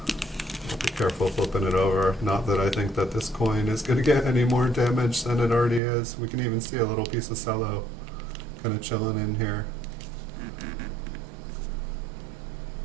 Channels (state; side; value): drops out; left; at 5.8 s